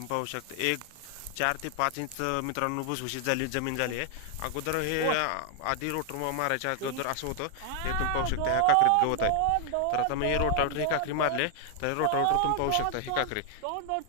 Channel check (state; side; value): different; both; correlation 0.00